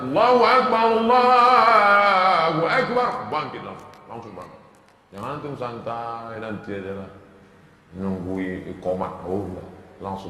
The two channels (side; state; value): both; identical; correlation 1.00